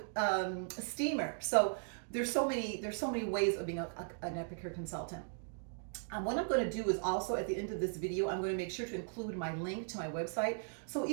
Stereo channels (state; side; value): silent; left; digital silence